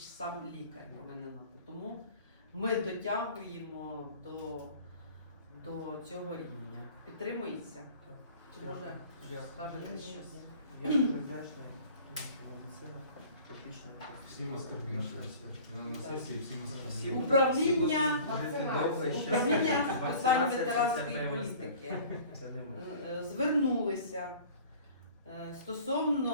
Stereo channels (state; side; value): inverted; both; correlation -0.46